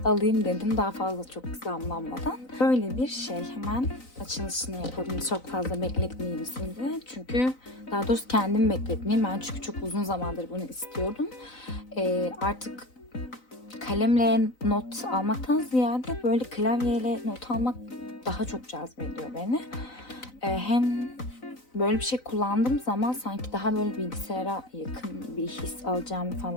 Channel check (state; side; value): late; right; 3.9 ms